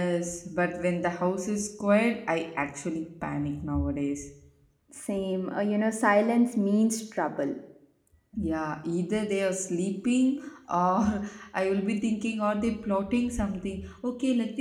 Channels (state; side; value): identical; both; correlation 1.00